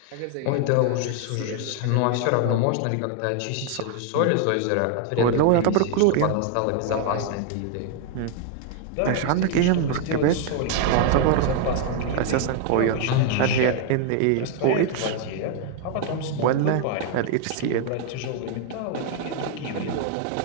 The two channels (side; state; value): both; different; correlation 0.00